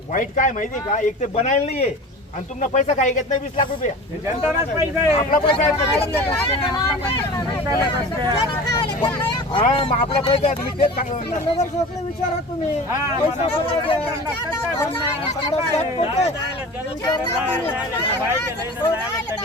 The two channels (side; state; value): both; normal; correlation 0.36